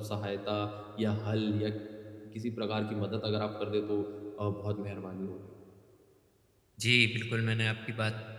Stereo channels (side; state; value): both; identical; correlation 1.00